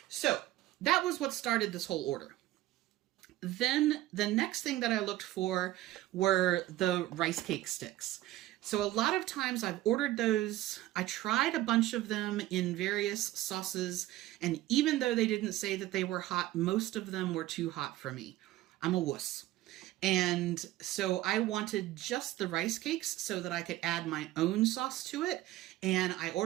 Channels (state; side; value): quieter; left; 15.8 dB